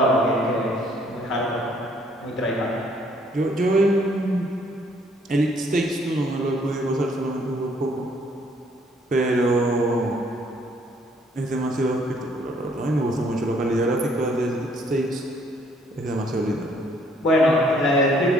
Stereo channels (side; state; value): both; normal; correlation 0.64